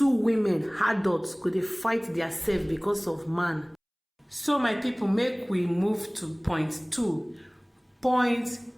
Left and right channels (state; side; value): identical; both; correlation 1.00